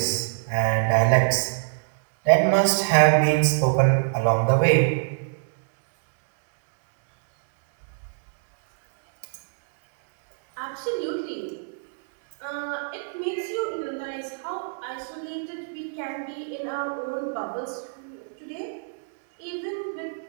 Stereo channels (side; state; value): left; silent; digital silence